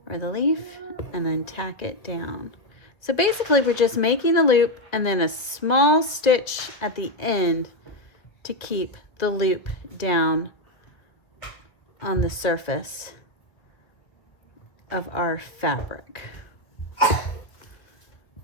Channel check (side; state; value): right; late; 1.6 ms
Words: or the leaf and then tack it down. So basically we're just making a loop and then a small stitch at the end to keep the loop down on the surface of our fabric.